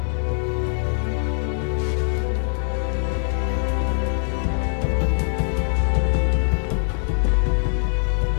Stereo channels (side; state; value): right; silent; digital silence